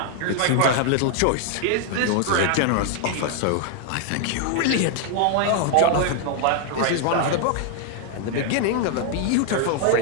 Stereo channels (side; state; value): both; different; correlation 0.00